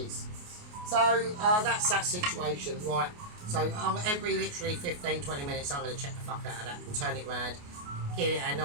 So that's that situation, right? So every literally 15-20 minutes I'm going to check the fuck out of that and turn it round, give it a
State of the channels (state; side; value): late; left; 28 ms